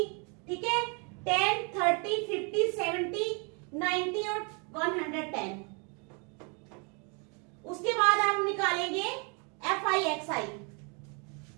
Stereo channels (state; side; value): quieter; left; 34.8 dB